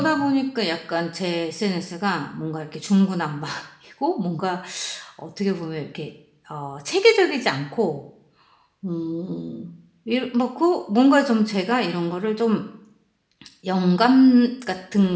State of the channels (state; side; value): identical; both; correlation 1.00